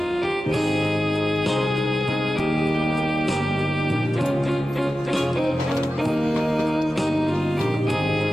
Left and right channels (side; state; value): both; normal; correlation 0.93